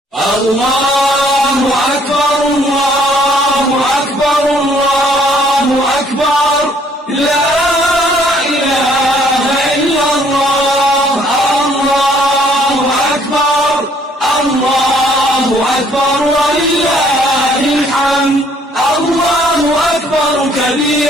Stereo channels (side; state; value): both; normal; correlation 0.63